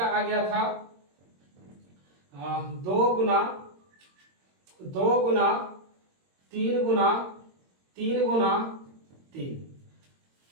आ गया था 2 गुना 2 गुना 3 गुना 3 गुना 3।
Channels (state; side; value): late; left; 22 ms